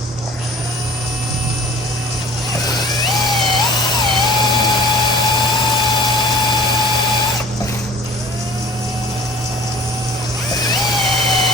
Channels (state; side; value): normal; both; correlation 0.48